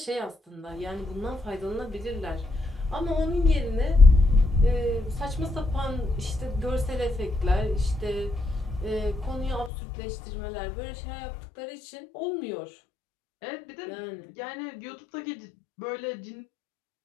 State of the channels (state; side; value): drops out; right; at 9.7 s